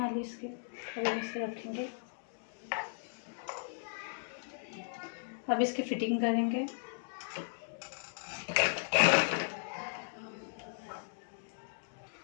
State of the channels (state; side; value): silent; right; digital silence